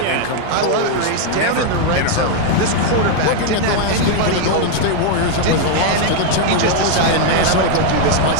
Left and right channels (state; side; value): different; both; correlation 0.00